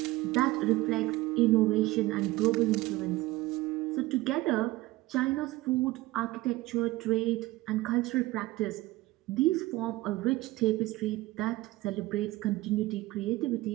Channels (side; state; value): left; quieter; 18.7 dB